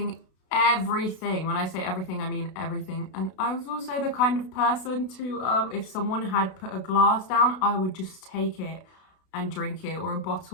everything. When I say everything, I mean everything. And I was also the kind of person to, if someone had put a glass down, I would just take it and drink it, or a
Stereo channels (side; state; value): right; late; 32 ms